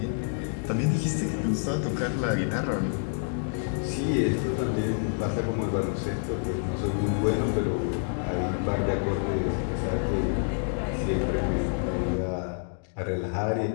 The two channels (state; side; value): silent; right; digital silence